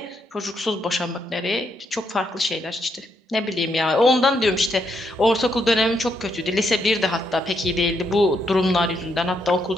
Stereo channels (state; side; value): normal; both; correlation 0.77